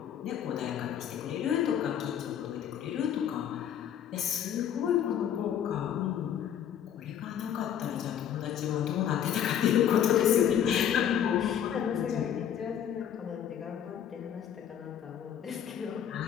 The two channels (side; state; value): right; quieter; 9.5 dB